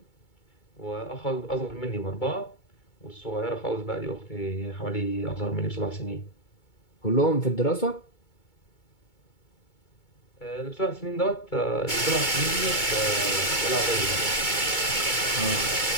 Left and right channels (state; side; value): late; right; 2.2 ms